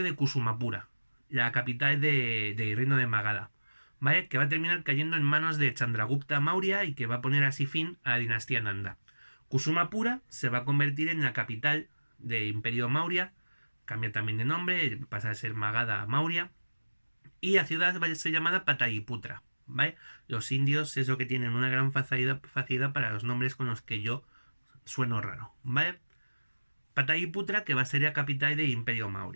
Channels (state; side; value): inverted; both; correlation -1.00